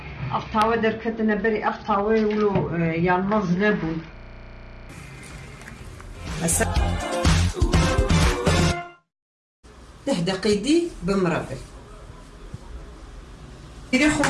أفتاوى دركتنا بري أفتاوى ولو يعني مظلبون دقيقي بمربل إذا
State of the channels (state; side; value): identical; both; correlation 1.00